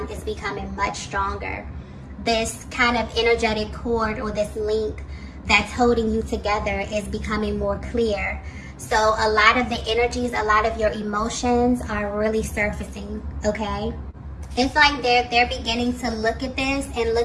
is becoming much stronger. This kind of energetic cord or this link that's holding you together is becoming more clear. So a lot of the energies, a lot of your emotions are really surfacing, okay? It's like they're beginning to look at this and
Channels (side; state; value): both; identical; correlation 1.00